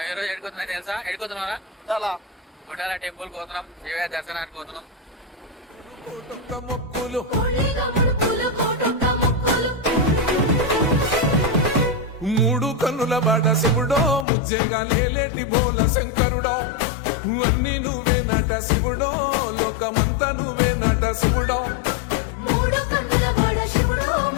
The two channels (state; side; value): drops out; right; at 14.2 s